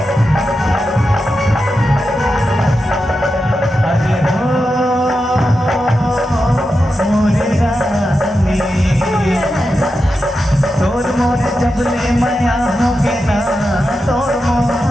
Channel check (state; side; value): normal; both; correlation 0.89